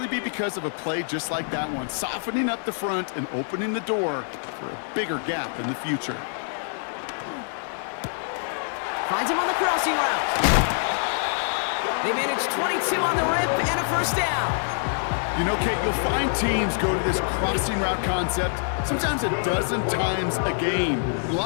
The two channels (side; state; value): right; silent; digital silence